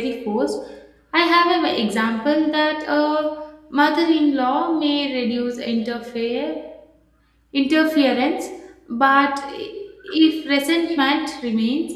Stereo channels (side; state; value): both; identical; correlation 1.00